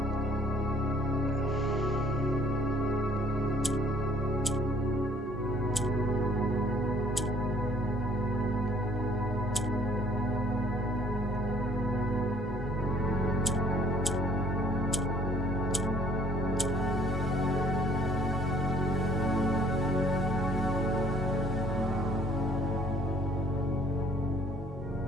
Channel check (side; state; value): both; normal; correlation 0.58